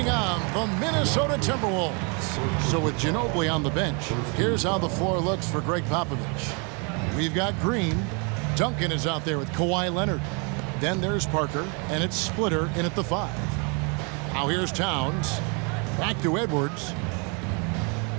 on the Minnesota Timberwolves. So with Ginobili on the bench, here's how the floor looks for Greg Popovich. We've got Green. Duncan is out there with Kawhi Leonard. Then there's Parker, and it's Splitter in at the 5. Now here's Towns. Back to Edwards.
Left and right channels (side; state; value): left; quieter; 34.1 dB